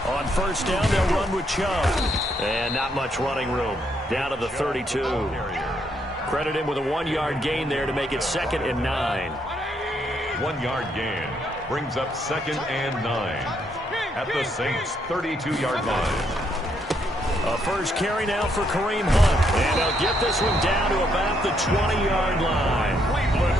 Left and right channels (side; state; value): both; normal; correlation 0.74